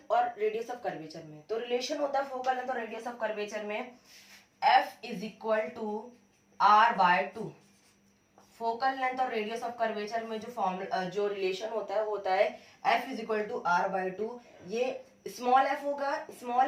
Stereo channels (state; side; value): identical; both; correlation 1.00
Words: और रेडियस ऑफ कर्वेचर में. तो रिलेशन होता है फोकल लेंथ और रेडियस ऑफ कर्वेचर में F is equal to R by 2. Focal length और रेडियस ऑफ कर्वेचर में जो रिलेशन होता है वो होता है F is equal to R by 2. ये स्मॉल f होगा,